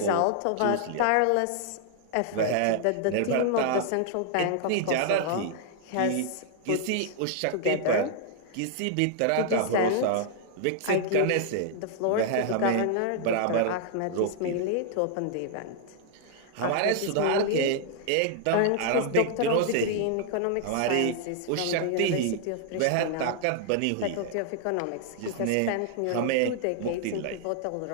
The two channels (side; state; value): both; different; correlation 0.00